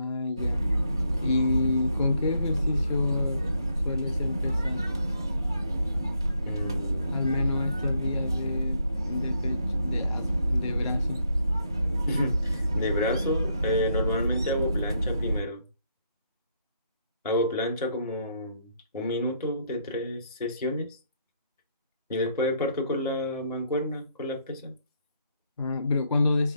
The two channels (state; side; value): inverted; both; correlation -0.74